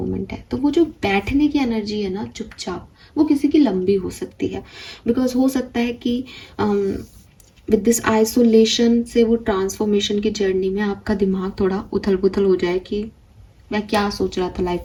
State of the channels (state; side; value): identical; both; correlation 1.00